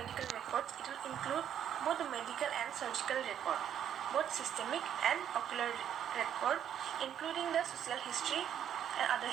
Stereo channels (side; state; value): left; quieter; 9.6 dB